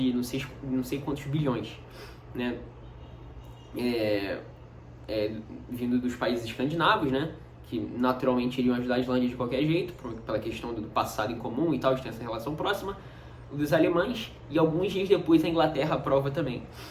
não sei quantos bilhões, né? Vindo dos países escandinavos, né? Que naturalmente iriam ajudar a Islândia de qualquer jeito, pela questão do passado em comum e tal, de ter essa relação próxima, dos alemães, e alguns dias depois a Inglaterra aprova também.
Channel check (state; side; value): identical; both; correlation 1.00